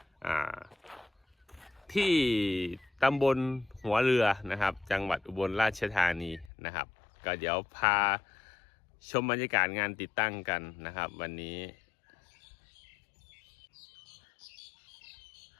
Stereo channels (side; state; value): right; drops out; at 6.5 s